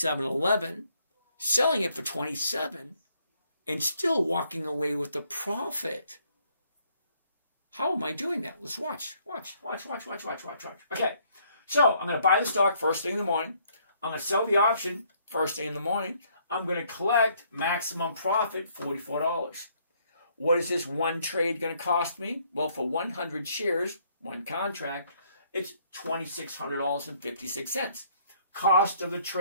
selling it for 27, and still walking away with the profit. How am I doing that? Let's watch. Okay, so I'm going to buy the stock first thing in the morning. I'm going to sell the option first thing in the morning. I'm going to collect maximum profit, $44. What is this one trade going to cost me? Well, for 100 shares, one contract, it's $2,600.56. Cost of the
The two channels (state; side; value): inverted; both; correlation -0.67